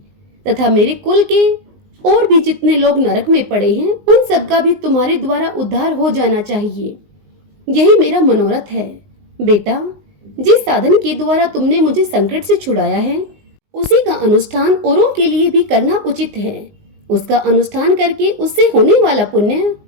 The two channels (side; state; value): left; late; 19 ms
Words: तथा मेरे कुल के और भी जितने लोग नरक में पड़े हैं उन सब का भी तुम्हारे द्वारा उद्धार हो जाना चाहिए। यही मेरा मनोरथ है। बेटा, जिस साधन के द्वारा तुमने मुझे संकट से छुड़ाया है उसी का अनुष्ठान औरों के लिए भी करना उचित है। उसका अनुष्ठान करके उससे होने वाला पुण्य